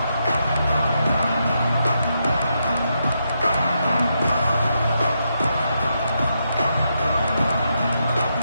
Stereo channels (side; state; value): both; inverted; correlation -0.82